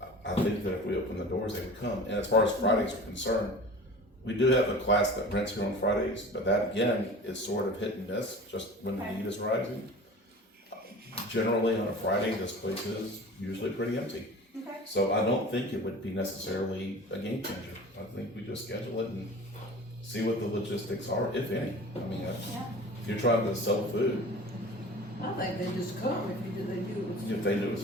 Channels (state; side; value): normal; both; correlation 0.39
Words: I think that if we open the doors, they would come. And as far as Fridays are concerned, we do have a class that rents here on Fridays, but that again is sort of hit and miss, just when the need is rising. Generally on a Friday, this place is usually pretty empty. Okay. So I don't think it would be necessarily a game changer. I think we just schedule it and see what the logistics are, if any. I mean, if you're trying to sell food, I think they just come if they do it. if they do as